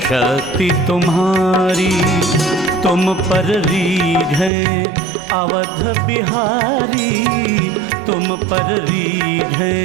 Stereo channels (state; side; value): drops out; left; at 4.5 s